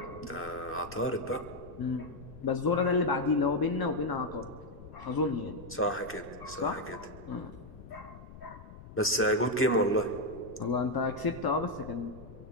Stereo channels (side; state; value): left; noise; rumble, 16 dB below the sound